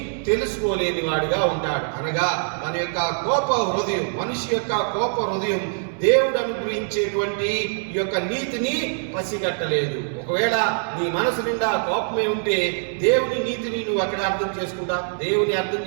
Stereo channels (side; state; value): left; silent; 63 dB below the other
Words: తెలుసుకోలేని వాడిగా ఉంటాడు. అనగా మన యొక్క కోప హృదయం, మనిషి యొక్క కోప హృదయం దేవుడు అనుగ్రహించేటువంటి ఈ యొక్క నీతిని పసిగట్టలేదు. ఒకవేళ నీ మనసు నిండా కోపమే ఉంటే దేవుని నీతిని నువ్వు అక్కడ అర్థం చేసుకుంటావు. దేవుని అర్థం